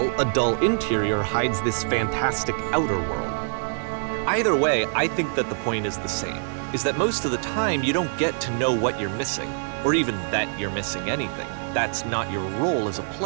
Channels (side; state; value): left; silent; digital silence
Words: a dull interior hides this fantastic outer world. Either way, I think that the point is the same, is that most of the time you don't get to know what you're missing, or even that you're missing anything. That's not your role as a